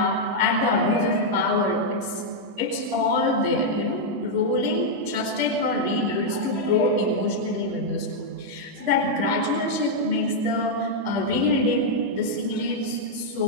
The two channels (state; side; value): late; left; 9.3 ms